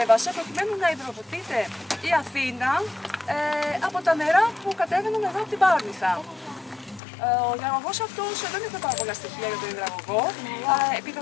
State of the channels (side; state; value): right; drops out; at 7.0 s